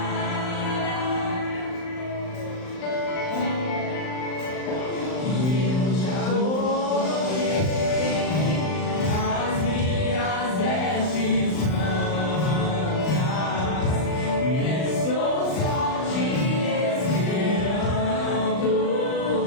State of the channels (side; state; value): right; late; 39 ms